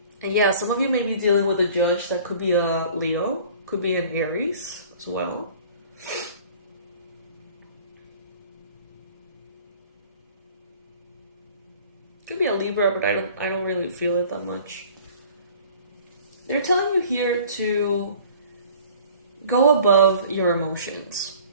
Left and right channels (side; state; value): both; inverted; correlation -0.49